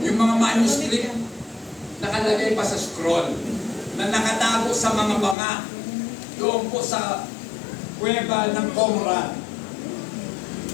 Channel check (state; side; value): drops out; right; at 5.4 s